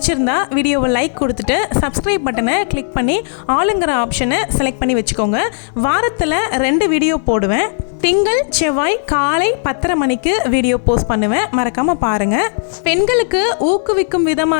வீடியோவை லைக் கொடுத்துட்டு சப்ஸ்கிரைப் பட்டனை கிளிக் பண்ணி ஆளுங்கிற ஆப்ஷனை செலக்ட் பண்ணி வச்சுக்கோங்க. வாரத்தில் 2 வீடியோ போடுவேன். திங்கள் செவ்வாய் காலை 10:30 மணிக்கு வீடியோ போஸ்ட் பண்ணுவேன், மறக்காமல் பாருங்கள். பெண்களுக்கு ஊக்குவிக்கும்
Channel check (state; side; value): silent; right; 68 dB below the other